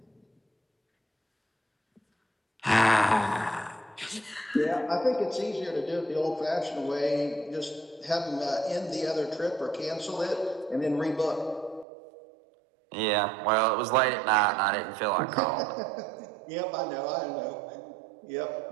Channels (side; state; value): left; drops out; at 11.9 s